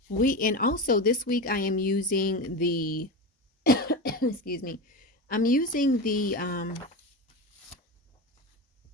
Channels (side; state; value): both; normal; correlation 0.22